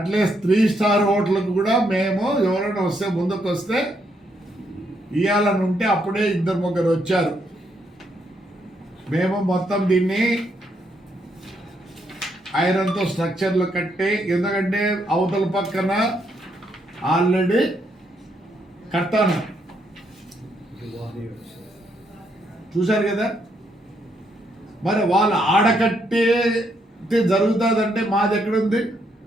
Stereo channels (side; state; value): both; normal; correlation 0.75